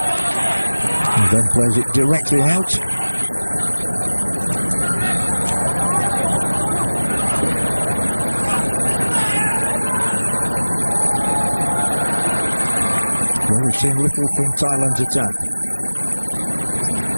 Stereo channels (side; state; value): both; inverted; correlation -1.00